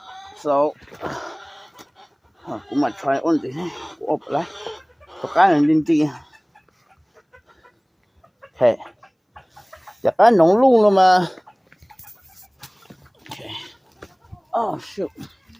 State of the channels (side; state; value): both; identical; correlation 1.00